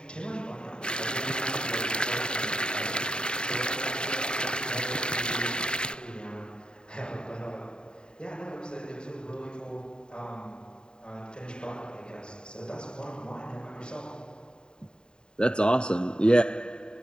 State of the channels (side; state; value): right; late; 0.049 ms